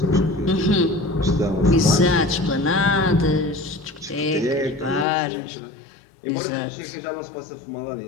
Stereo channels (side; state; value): right; drops out; at 5.1 s